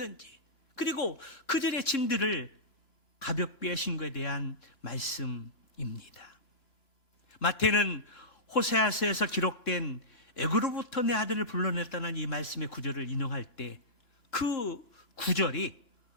그리고 그들의 짐들을 가볍게 하신 것에 대한 말씀입니다. 마태는 호세아서에서 기록된 애굽으로부터 내 아들을 불러냈다는 이 말씀의 구절을 인용할 때 그 구절이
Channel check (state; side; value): late; right; 2.9 ms